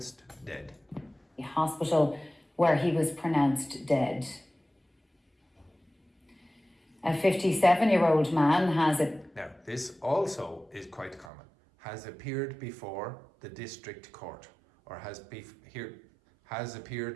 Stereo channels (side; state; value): left; drops out; at 11.3 s